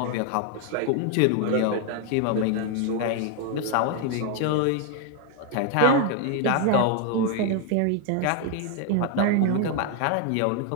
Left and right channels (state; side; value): different; both; correlation 0.01